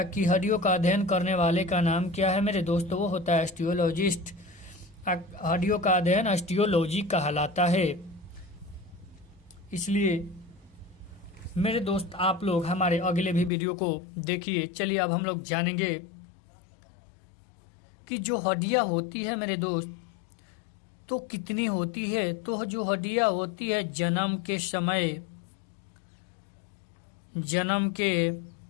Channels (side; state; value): right; drops out; at 13.5 s